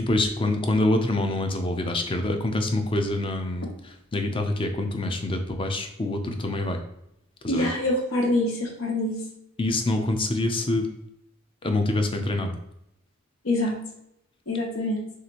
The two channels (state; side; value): normal; both; correlation 0.65